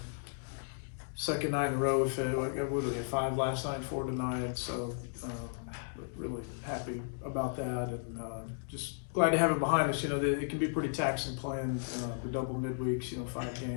Second night in a row, we get 5 last night, 4 tonight. So really happy about that, and just glad to have it behind us. It can be pretty taxing playing the double midweeks. 5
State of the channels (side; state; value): right; silent; digital silence